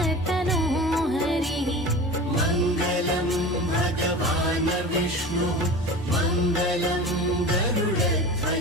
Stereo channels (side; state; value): both; normal; correlation 0.34